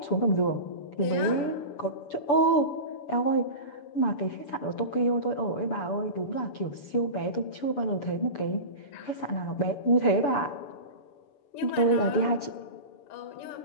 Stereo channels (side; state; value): right; late; 6.9 ms